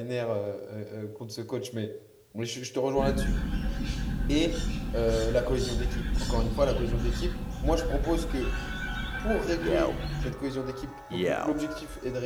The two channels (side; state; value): both; identical; correlation 1.00